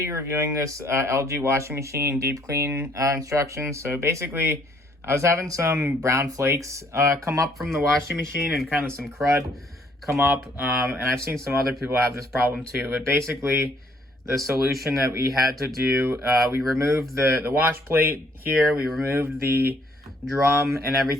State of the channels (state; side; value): normal; both; correlation 0.65